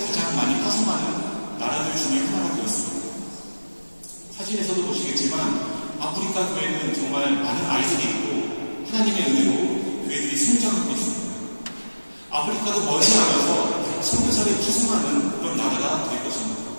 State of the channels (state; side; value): inverted; both; correlation -1.00